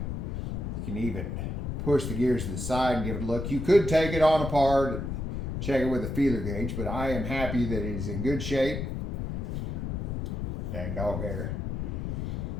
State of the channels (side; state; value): left; noise; rumble, 3 dB below the sound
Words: You can even push the gears to the side and give it a look. You could take it on apart, check it with a feeler gauge, but I am happy that it is in good shape. Dang dog hair.